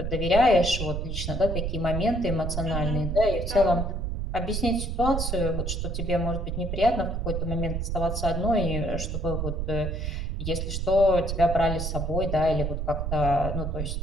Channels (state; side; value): noise; right; rumble, 2 dB below the sound